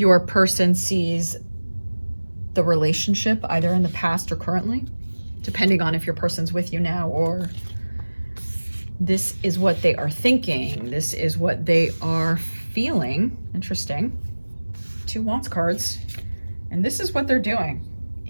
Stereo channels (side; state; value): both; inverted; correlation -1.00